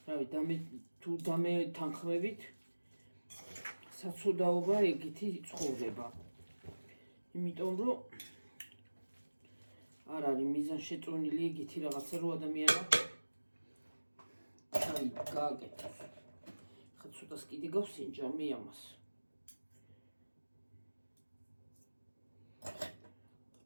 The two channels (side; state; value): both; inverted; correlation -1.00